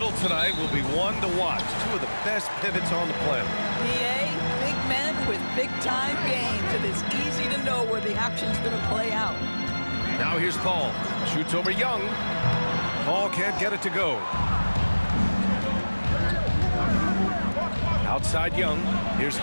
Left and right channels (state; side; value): inverted; both; correlation -1.00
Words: tonight will be one to watch. Two of the best pivots on the planet. PA, big men with big-time games. It is easy to know where the action's going to play out. Now here's Paul. Shoots over Young. Paul can't get it to go. Outside Young. Here's